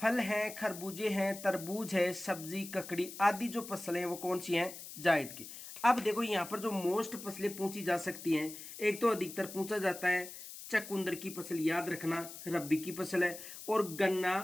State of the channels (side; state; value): left; noise; hiss, 12 dB below the sound